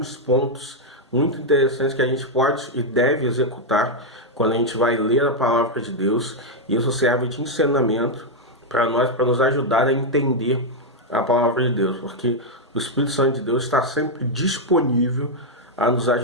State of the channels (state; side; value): normal; both; correlation 0.00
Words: pontos muito interessantes que a gente pode e deve executar quando a gente vai ler a palavra de Deus. E isso serve de ensinamento para nós, para nos ajudar a entender a palavra de Deus, porque o Espírito Santo de Deus está sempre disponível a nos